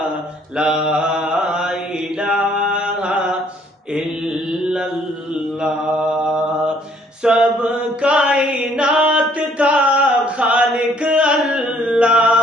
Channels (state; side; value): normal; both; correlation 0.62